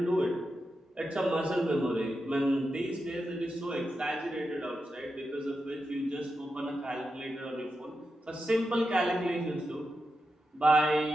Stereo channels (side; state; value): both; normal; correlation 0.88